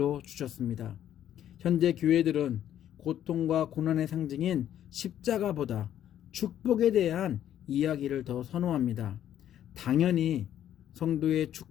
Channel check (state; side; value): quieter; right; 11.0 dB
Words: 주셨습니다. 현재 교회들은 고통과 고난의 상징인 십자가보다 축복에 대한 이야기를 더 선호합니다. 당연히 성도의